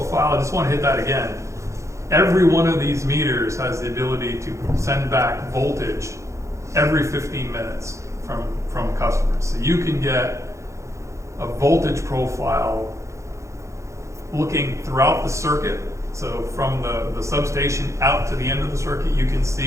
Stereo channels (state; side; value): late; left; 0.14 ms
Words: I just want to hit that again. Every one of these meters has the ability to send back voltage every 15 minutes from customers. So you can get a voltage profile looking throughout the circuit. So from the substation out to the end of the circuit, you can